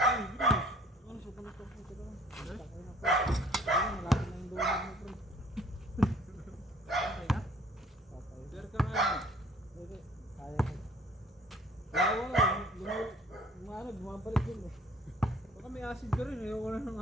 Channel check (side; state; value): both; normal; correlation 0.55